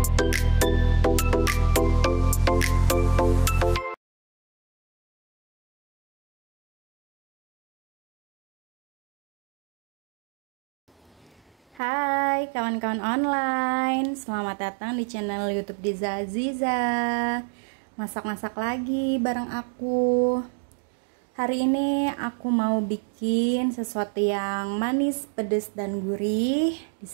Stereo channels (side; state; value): left; drops out; at 11.8 s